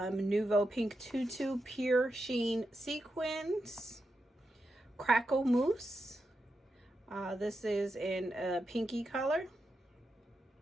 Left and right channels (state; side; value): normal; both; correlation 0.87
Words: pink tutu pure sheen sequins. Crackle mousse. This is in a pinky color.